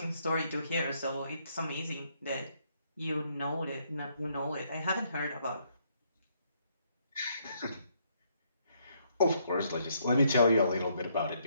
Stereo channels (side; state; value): both; inverted; correlation -0.72